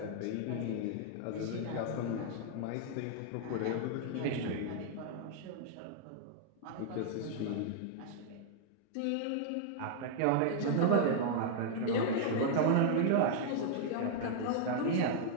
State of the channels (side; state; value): both; different; correlation -0.01